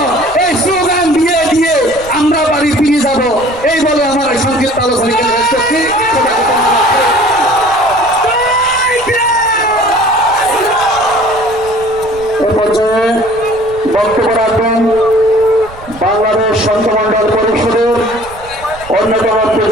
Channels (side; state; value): right; noise; rumble, 19 dB below the sound